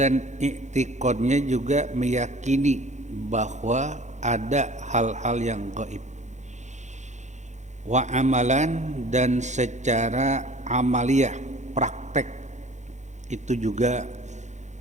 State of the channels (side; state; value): left; late; 0.34 ms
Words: i'tiqadnya juga meyakini bahwa ada hal-hal yang gaib, wa amalan, dan secara amaliyah, praktek, itu juga